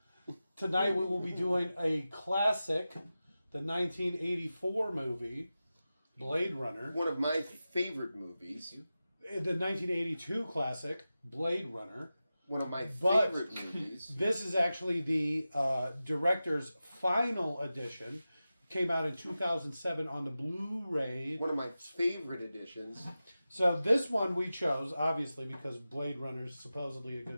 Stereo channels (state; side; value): inverted; both; correlation -0.94